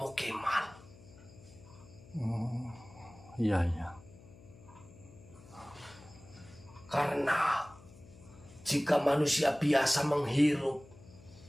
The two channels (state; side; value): noise; left; hum, 21 dB below the sound